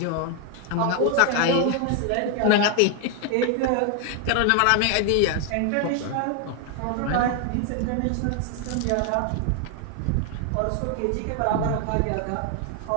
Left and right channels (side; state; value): both; different; correlation 0.01